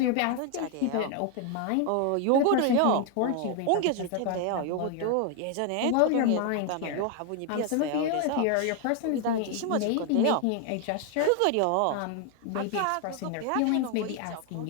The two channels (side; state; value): both; different; correlation 0.01